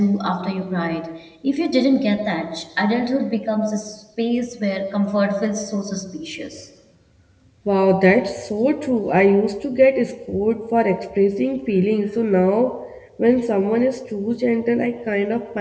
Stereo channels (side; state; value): both; identical; correlation 1.00